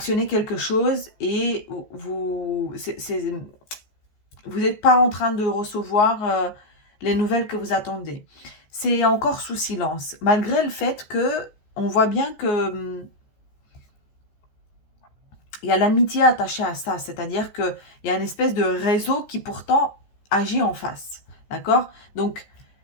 quelque chose et vous n'êtes pas en train de recevoir les nouvelles que vous attendez. C'est encore sous silence, malgré le fait que on voit bien que il y a l'amitié attachée à ça, c'est-à-dire qu'il y a une espèce de réseau qui pourtant agit en face. D'accord? Donc,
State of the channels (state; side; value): late; right; 14 ms